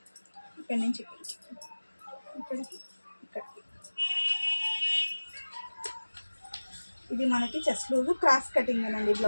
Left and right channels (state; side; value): inverted; both; correlation -1.00